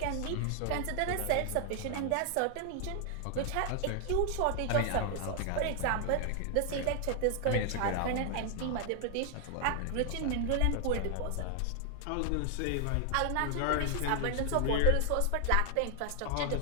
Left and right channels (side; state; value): both; different; correlation 0.00